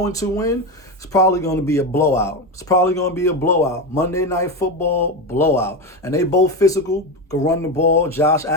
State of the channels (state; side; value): normal; both; correlation 0.16